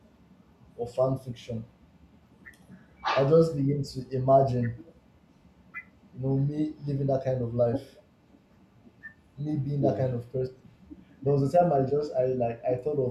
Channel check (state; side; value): identical; both; correlation 1.00